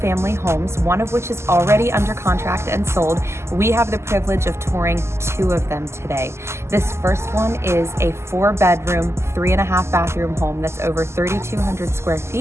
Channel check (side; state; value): left; late; 0.13 ms